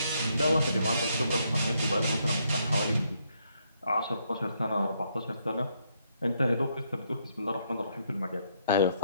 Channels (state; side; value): inverted; both; correlation -0.74